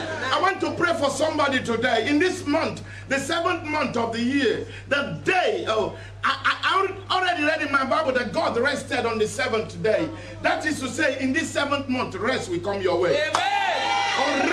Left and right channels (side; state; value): both; identical; correlation 1.00